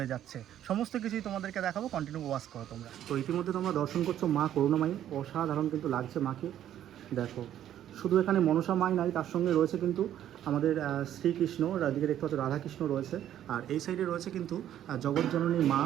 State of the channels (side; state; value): left; quieter; 11.2 dB